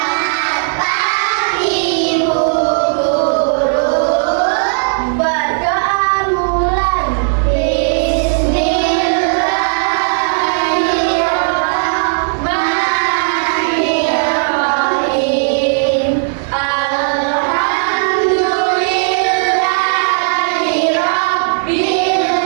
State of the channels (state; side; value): silent; left; digital silence